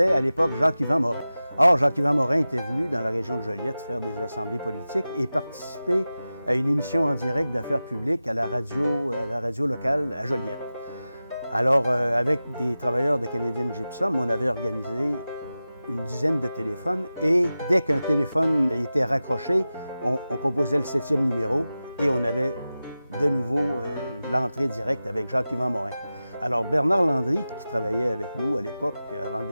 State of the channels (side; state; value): both; inverted; correlation -0.95